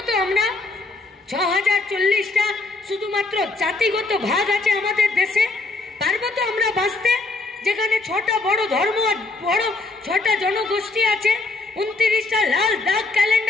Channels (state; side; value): quieter; right; 3.4 dB